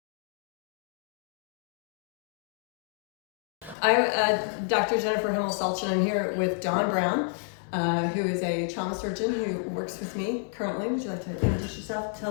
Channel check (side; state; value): right; drops out; at 3.8 s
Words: I'm Dr. Jennifer Himmel Salch, and I'm here with Dawn Brown, who is a trauma surgeon who works with me currently. Would you like to introduce yourself,